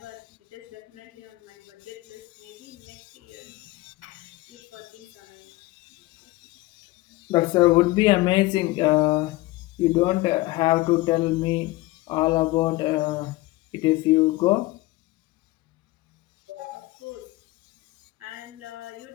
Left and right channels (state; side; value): quieter; right; 20.0 dB